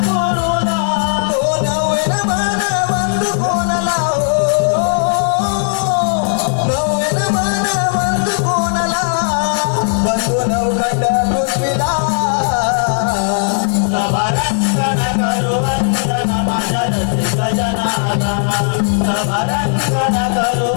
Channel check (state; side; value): silent; right; digital silence